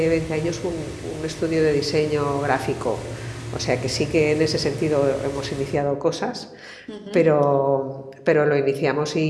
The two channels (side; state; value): both; identical; correlation 1.00